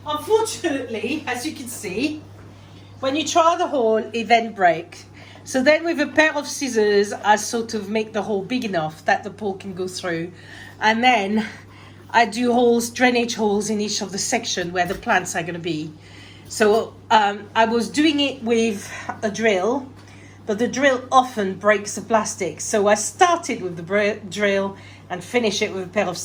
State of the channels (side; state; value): both; identical; correlation 1.00